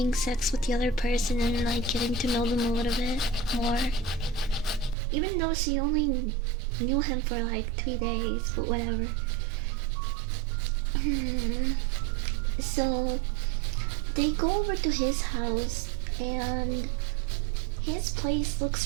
sex with the other person and like getting to know them a little bit more. Even though she only knew him for like 3 days, but whatever. So they go over to his house and his place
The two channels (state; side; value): drops out; left; at 5.0 s